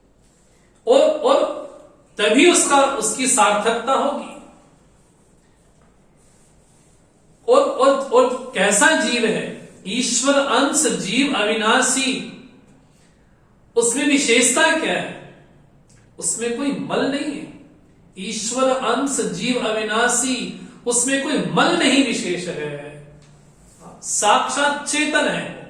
और तभी उसकी सार्थकता होगी। और कैसा जीव है? ईश्वर अंश, जीव अविनाशी। उसमें विशेषता क्या है? उसमें कोई मल नहीं है। ईश्वर अंश, जीव अविनाशी, उसमें कोई मल नहीं विशेष है, साक्षात चेतन है।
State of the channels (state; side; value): identical; both; correlation 1.00